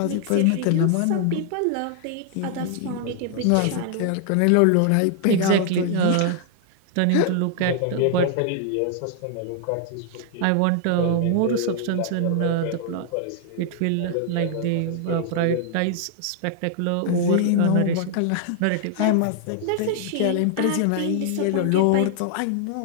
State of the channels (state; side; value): different; both; correlation 0.00